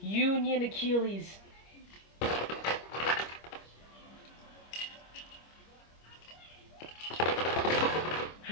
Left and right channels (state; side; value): late; right; 25 ms